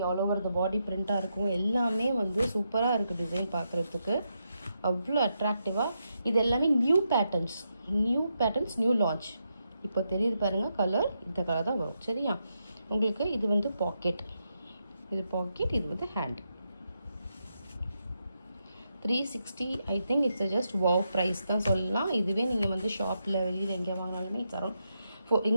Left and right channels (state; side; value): inverted; both; correlation -0.83